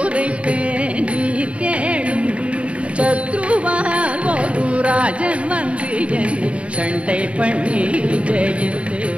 நீர் கேளும். சத்ருவால் ஒரு ராஜன் வந்து என்னை சண்டை பண்ணி ஜெயித்து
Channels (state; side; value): late; left; 0.062 ms